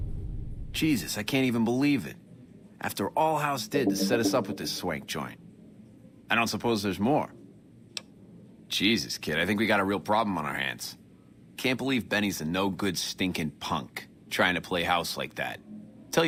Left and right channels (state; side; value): identical; both; correlation 1.00